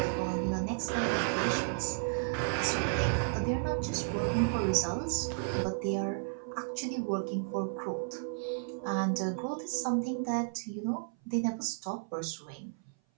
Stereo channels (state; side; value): silent; left; 56 dB below the other